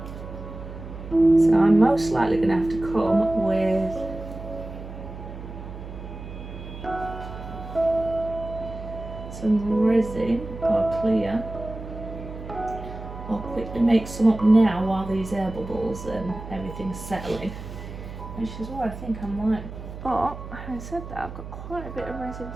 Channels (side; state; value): right; noise; hum, 11 dB below the sound